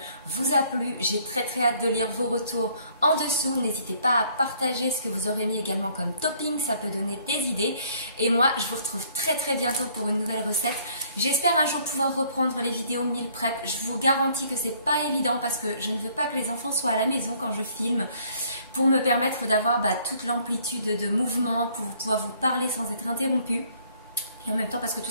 vous a plu, j'ai très très hâte de lire vos retours en dessous. N'hésitez pas à partager ce que vous aurez mis également comme topping, ça peut donner des idées. Et moi, je vous retrouve très très bientôt pour une nouvelle recette. J'espère un jour pouvoir reprendre les vidéos meal prep. Je vous garantis que c'est pas évident parce que je ne veux pas que les enfants soient à la maison quand je filme, pour me permettre d'avoir toute l'amplitude de mouvement, pour pouvoir vous parler sans être interrompu. Et en même temps parce que tout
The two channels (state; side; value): inverted; both; correlation -0.62